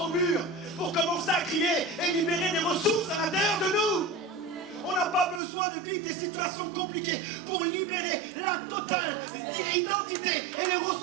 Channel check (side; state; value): left; drops out; at 5.4 s